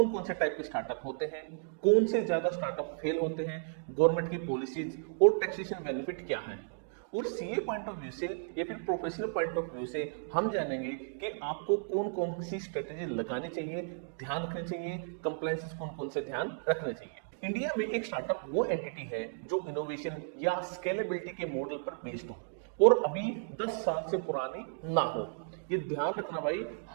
कौन से टाइप के स्टार्टअप होते हैं, कौन से ज्यादा स्टार्टअप फेल होते हैं, गवर्नमेंट की पॉलिसीज और टैक्सेशन बेनिफिट क्या है, और सीए पॉइंट ऑफ व्यू से या फिर प्रोफेशनल पॉइंट ऑफ व्यू से हम जानेंगे कि आपको कौन कौन सी स्ट्रेटेजी लगानी चाहिए, ध्यान रखने चाहिए, कंप्लायंसेस कौन कौन से ध्यान रखने चाहिए। इंडिया में एक स्टार्टअप वो एंटिटी है जो इनोवेशन या स्केलेबिलिटी के मॉडल पर बेस्ड हो और अभी 10 साल से पुरानी ना हो। ये ध्यान रखना भाई,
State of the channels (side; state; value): left; silent; digital silence